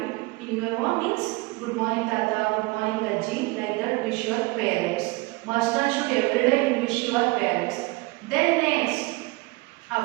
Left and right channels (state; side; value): quieter; left; 23.3 dB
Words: in your home means good morning tata, good morning Ajji, like that wish your parents. Must and should every day you wish your parents. Then next,